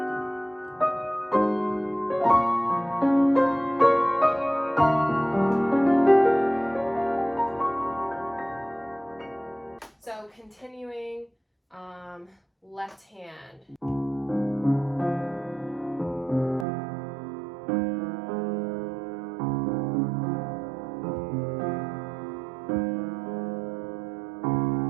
So continuing, left hand.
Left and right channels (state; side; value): drops out; left; at 16.7 s